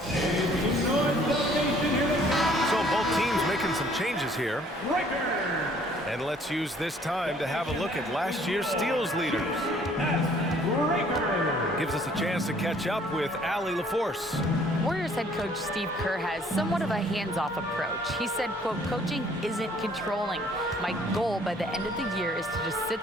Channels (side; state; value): both; normal; correlation 0.59